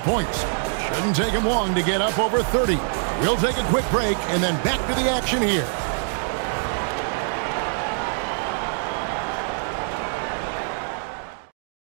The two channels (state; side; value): silent; left; digital silence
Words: Shouldn't take him long to get up over 30. We'll take a quick break and then back to the action here.